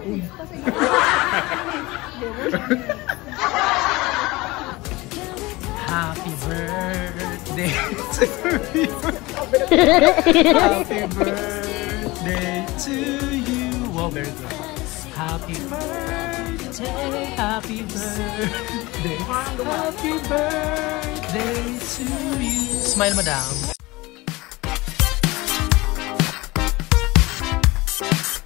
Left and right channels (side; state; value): right; quieter; 21.6 dB